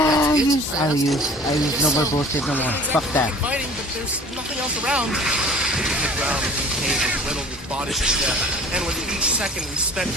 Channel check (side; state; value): both; normal; correlation 0.46